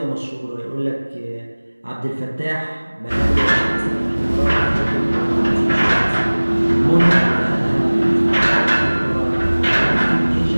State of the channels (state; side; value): inverted; both; correlation -1.00